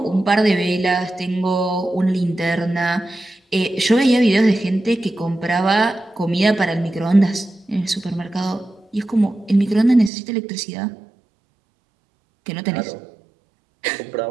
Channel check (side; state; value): left; drops out; at 10.1 s